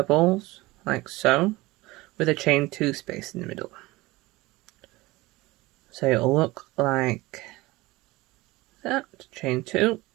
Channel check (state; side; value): quieter; left; 20.4 dB